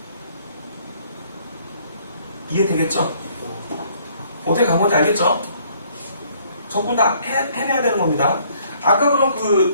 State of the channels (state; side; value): inverted; both; correlation -0.62